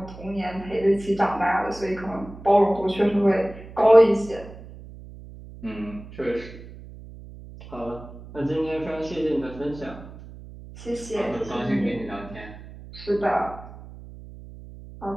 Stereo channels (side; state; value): right; noise; hum, 16 dB below the sound